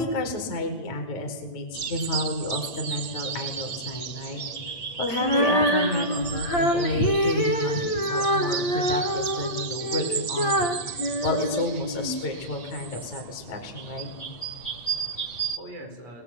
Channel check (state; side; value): late; right; 8.6 ms